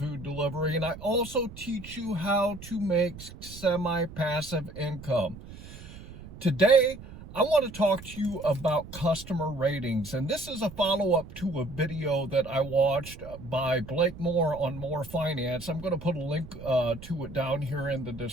delivery, and I also teach you how to make semi-passive income. Today, I want to talk to you about customer ratings, and this is a follow-up to a video that I watched by Blake Moore on More Finance. I'm going to put a link to it down here in the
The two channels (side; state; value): right; noise; rumble, 15 dB below the sound